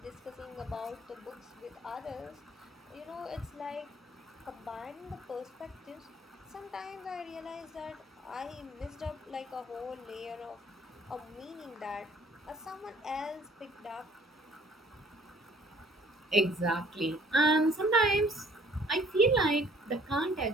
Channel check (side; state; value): both; normal; correlation 0.57